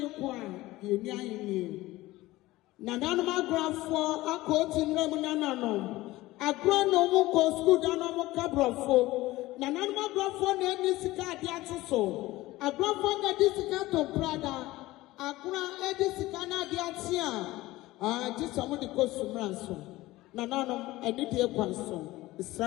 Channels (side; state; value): right; quieter; 18.2 dB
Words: yenya yini. Nananuma grafo akoti nremu nanano. Agro no mu ko school dano mu kabrofo. Nananuma grafo na eni sika ade atoso. Agrafo na di sika to brada. Agra edi sika na ade atia. Just amu di ko sumranso. Nanano eni die kwanso.